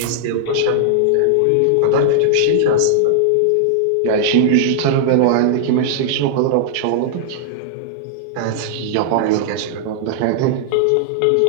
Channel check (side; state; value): both; different; correlation -0.01